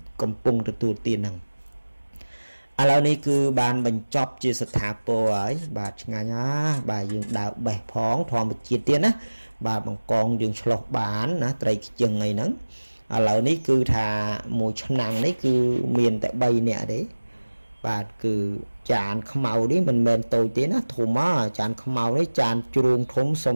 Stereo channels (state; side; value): inverted; both; correlation -1.00